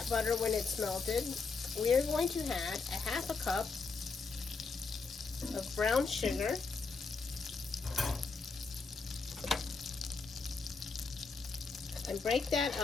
butter, when it's melted, we are going to add 1/2 cup of brown sugar, and break that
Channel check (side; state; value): right; quieter; 4.5 dB